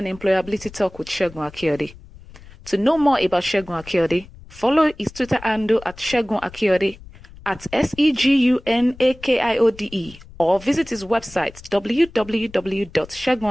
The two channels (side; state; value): left; noise; rumble, 20 dB below the sound